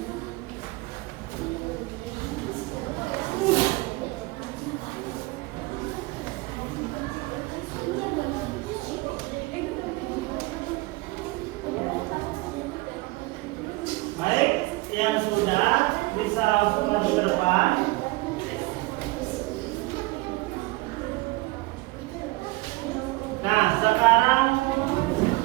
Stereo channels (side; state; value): left; quieter; 22.3 dB